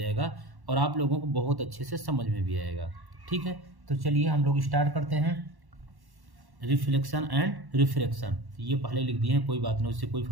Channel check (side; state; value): left; late; 1.1 ms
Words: और आप लोगों को बहुत अच्छे से समझ में भी आएगा। ठीक है, तो चलिए हम लोग स्टार्ट करते हैं। रिफ्लेक्शन एंड रिफ्रैक्शन, ये पहले लिख दिए हैं, कोई बात नहीं, उससे कोई